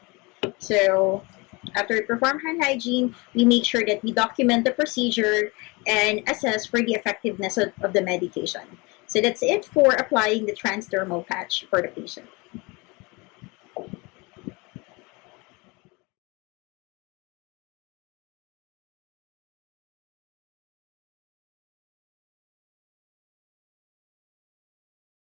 So after we perform hand hygiene, we make sure that we document the procedure and assess for the effectiveness of the medication. So that's it for applying the transdermal patch for the patient.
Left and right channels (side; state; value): right; quieter; 26.3 dB